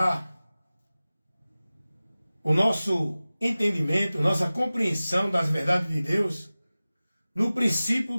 o nosso entendimento, nossa compreensão das verdades de Deus no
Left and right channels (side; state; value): both; inverted; correlation -0.97